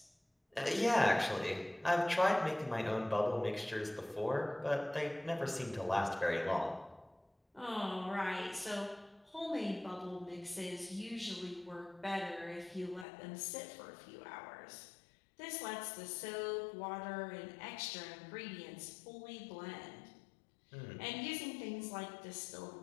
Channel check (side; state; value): right; drops out; at 13.1 s